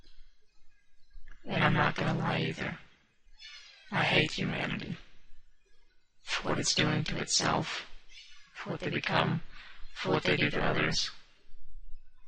And I'm not gonna lie either. I hate humanity. For what it's doing to itself. For what they become. For what they do to others.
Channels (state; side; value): identical; both; correlation 1.00